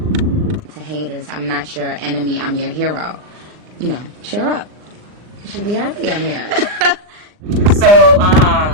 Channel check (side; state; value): left; late; 39 ms